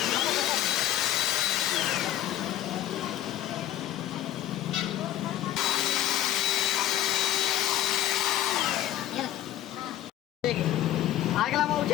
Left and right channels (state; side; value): quieter; right; 12.9 dB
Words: ठीक है। अगला हम